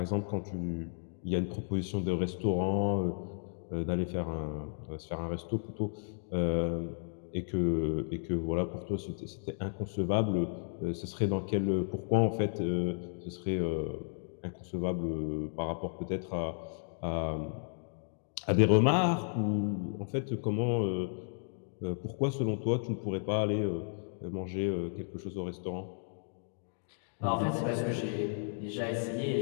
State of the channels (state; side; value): silent; right; digital silence